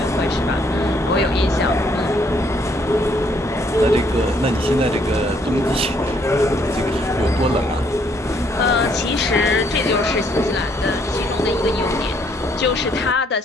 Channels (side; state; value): both; normal; correlation 0.68